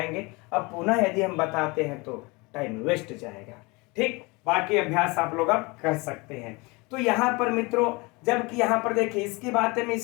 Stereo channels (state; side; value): quieter; right; 26.1 dB